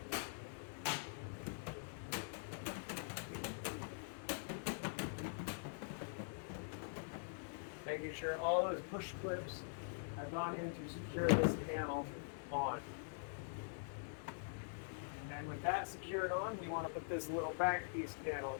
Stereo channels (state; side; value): silent; right; digital silence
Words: Making sure all those push clips have gone in to secure this panel on. And with that secured on, we want to put this little back piece panel